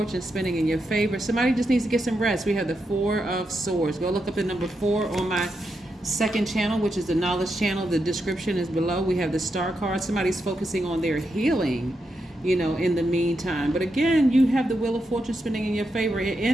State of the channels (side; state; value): both; normal; correlation 0.85